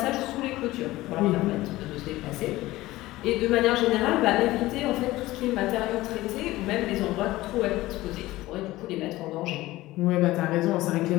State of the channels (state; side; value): quieter; right; 17.7 dB